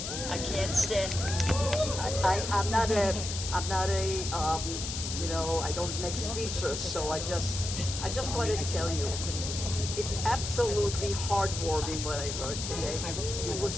I can't stand. I'm not a, I don't make speeches, so I just want to tell you, it's absolutely heartwarming what I heard today. It was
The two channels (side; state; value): left; noise; hiss, 5 dB below the sound